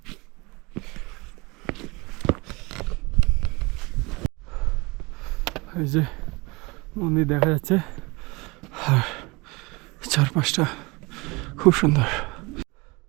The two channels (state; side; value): quieter; left; 25.5 dB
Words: এই যে মন্দির দেখা যাচ্ছে, আর চারপাশটা খুব সুন্দর।